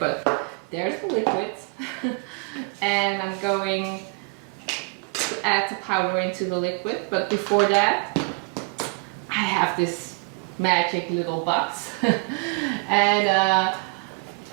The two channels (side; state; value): left; quieter; 34.5 dB